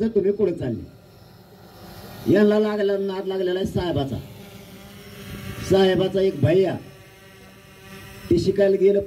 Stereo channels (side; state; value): both; identical; correlation 1.00